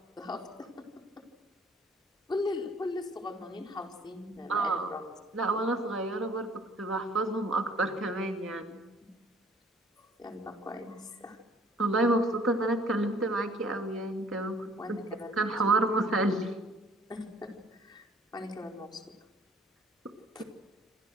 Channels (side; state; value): both; normal; correlation 0.57